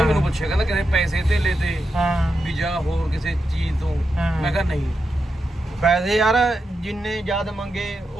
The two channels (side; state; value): both; normal; correlation 0.87